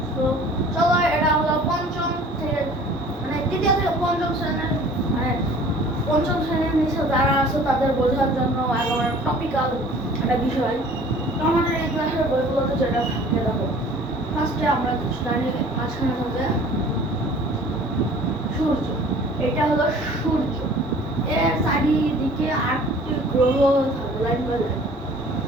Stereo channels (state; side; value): normal; both; correlation 0.49